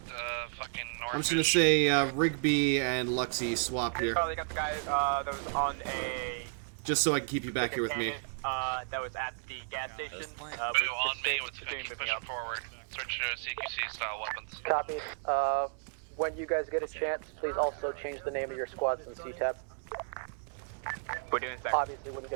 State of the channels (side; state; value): left; silent; 56 dB below the other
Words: fucking north. I'm just gonna say Rigby and Luxy swap here, Charlie got the guy that was on a. just so I can keep you back here with me. That was at the gas station. Blue on me. Let's keep pushing forward. Switch to CQC style weapons. Copy. When you guys get a chance, please also change the name of your squads in CTAP. We're doing that. Obviously, wouldn't